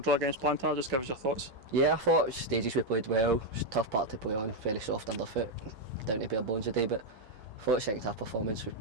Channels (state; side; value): late; left; 16 ms